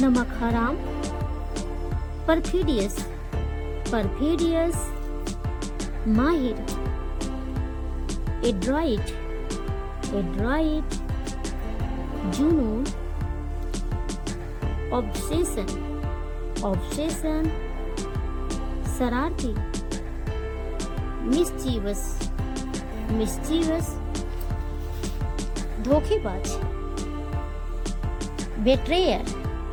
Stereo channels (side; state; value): both; identical; correlation 1.00